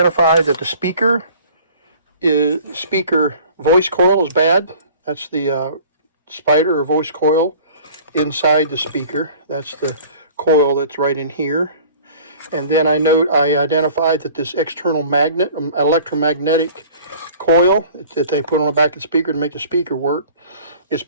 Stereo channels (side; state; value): both; inverted; correlation -0.47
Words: that the speaker voice coil is bad. That's the spider or voice coil inside the speaker. That's the coil that's right in here. And then I identified that this external electromagnetic coil that they put on the back of the speaker to make the speaker work is